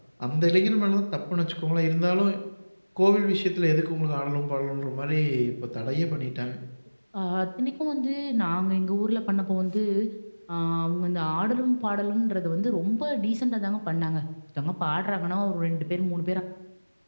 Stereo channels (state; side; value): inverted; both; correlation -1.00